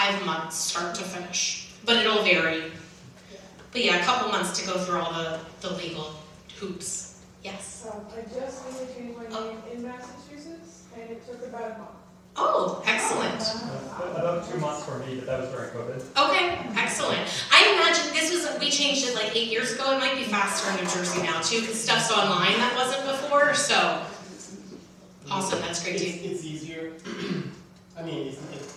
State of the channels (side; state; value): both; identical; correlation 1.00